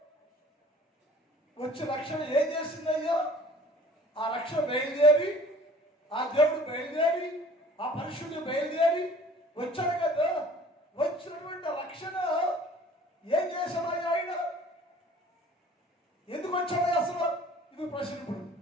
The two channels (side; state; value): both; normal; correlation 0.49